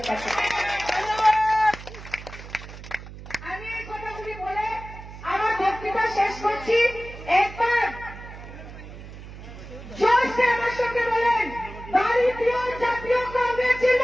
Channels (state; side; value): noise; right; hum, 14 dB below the sound